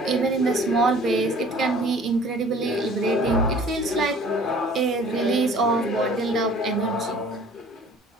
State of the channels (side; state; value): both; normal; correlation 0.50